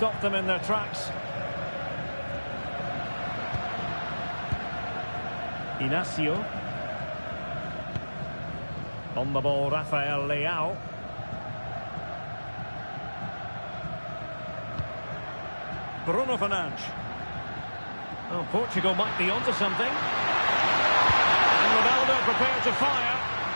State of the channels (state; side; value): inverted; both; correlation -1.00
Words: them in their tracks. Inacio. On the ball, Rafael Leao. Bruno Fernandes. Oh, Portugal might be onto something. And Ronaldo prepared to fire.